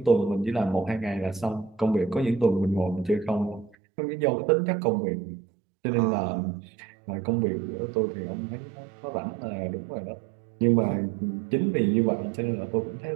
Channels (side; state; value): left; drops out; at 3.8 s